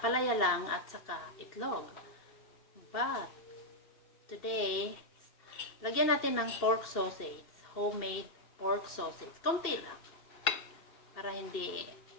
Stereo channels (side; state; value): right; late; 2.7 ms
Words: lang at saka itlog. But, today, lagyan natin ng pork sausage, homemade pork sausage. Konti lang. Para hindi